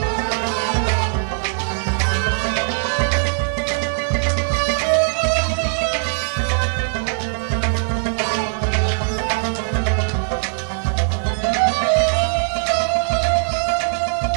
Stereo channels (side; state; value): left; silent; digital silence